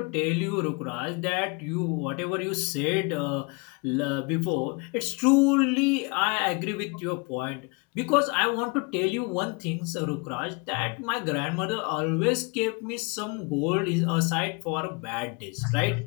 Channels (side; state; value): right; quieter; 29.9 dB